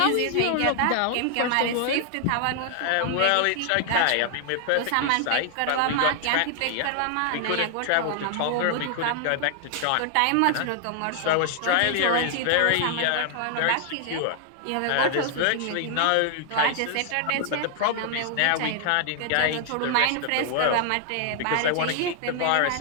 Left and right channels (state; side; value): different; both; correlation 0.00